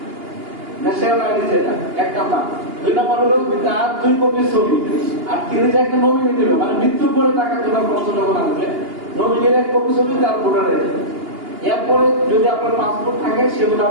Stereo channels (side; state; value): left; late; 2.8 ms